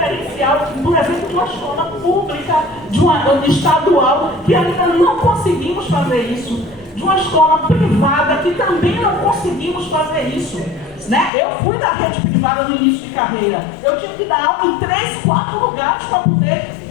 por exemplo, de uma escola pública, de uma estadual, que ainda não conseguimos fazer isso. De uma escola privada, que também não conseguimos fazer isso. Né? Eu fui da rede privada no início de carreira. Eu tive que dar aula em 3, 4 lugares para poder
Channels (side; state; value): right; drops out; at 11.3 s